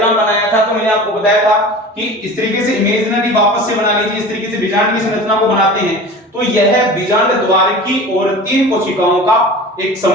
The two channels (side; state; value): both; normal; correlation 0.37